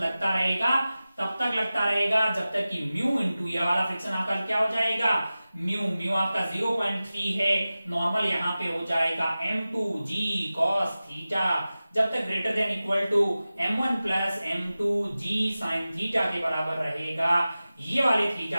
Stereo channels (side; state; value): both; inverted; correlation -0.96